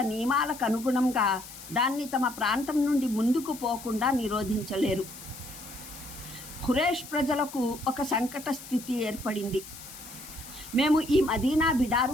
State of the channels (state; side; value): noise; left; hiss, 15 dB below the sound